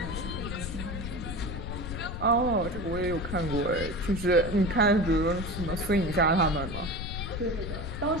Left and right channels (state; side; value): noise; left; rumble, 6 dB below the sound